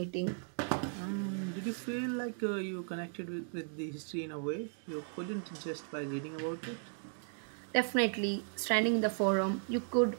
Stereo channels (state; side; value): silent; left; 54 dB below the other